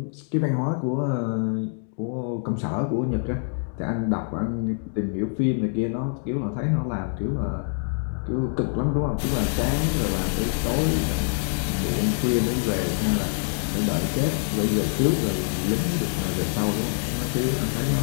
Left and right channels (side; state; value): right; silent; 62 dB below the other